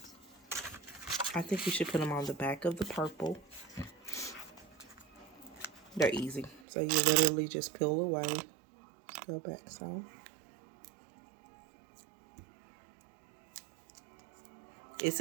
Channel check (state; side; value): drops out; left; at 6.6 s